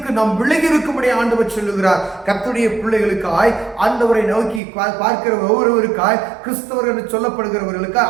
நாம் விலகி இருக்கும்படி ஆண்டவர் சொல்லுகிறார். கர்த்தருடைய பிள்ளைகளுக்காய், ஆண்டவரை நோக்கி பார்க்கிற ஒவ்வொருவருக்காய், கிறிஸ்தவர்கள் என்று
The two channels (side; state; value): left; drops out; at 4.6 s